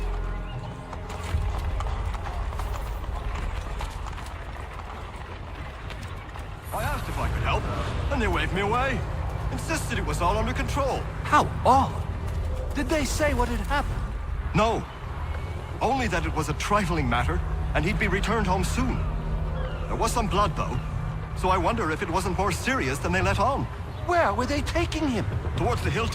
I asked if I could help, and they waved me away. Insisted it was all under control. How all? Did they say what had happened? No. Only that it was a trifling matter, and he'd be returned home soon. There was some blood, though, so I wonder if it wasn't more serious than they let on. Where were they taking him? Towards the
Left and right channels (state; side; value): identical; both; correlation 1.00